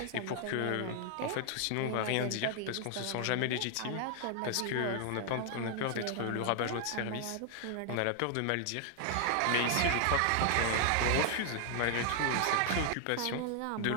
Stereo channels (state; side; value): different; both; correlation 0.00